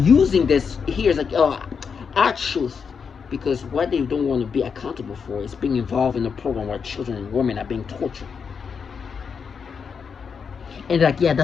this here. It's like, oh, our truth. Because what they don't want to be accountable for is being involved in a program where children and women are being tortured. And they're like, yeah,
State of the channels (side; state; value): right; quieter; 6.1 dB